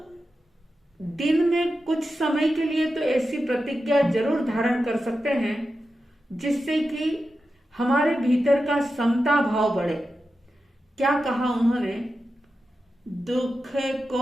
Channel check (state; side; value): normal; both; correlation 0.91